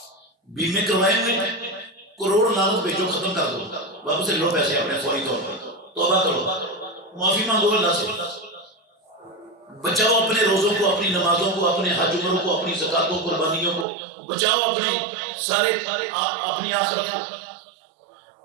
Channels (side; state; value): left; drops out; at 13.9 s